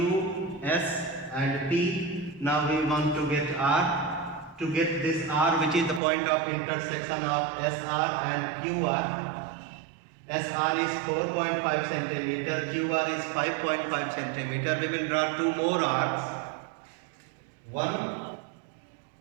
S and P. Now we want to get R. To get this R, which is the point of intersection of SR and QR. SR is 4.5 centimeter, QR is 5.5 centimeter. We will draw two more arcs. One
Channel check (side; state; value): left; drops out; at 6.0 s